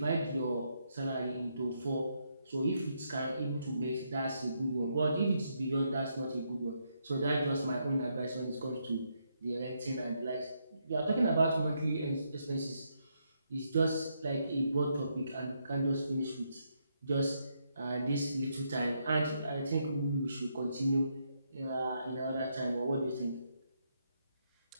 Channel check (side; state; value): both; inverted; correlation -0.78